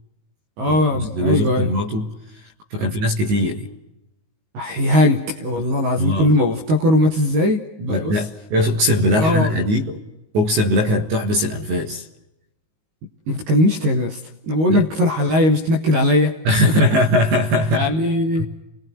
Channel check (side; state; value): left; late; 19 ms